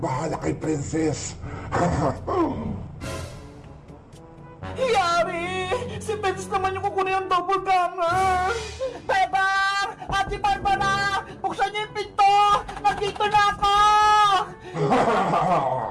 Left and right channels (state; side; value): identical; both; correlation 1.00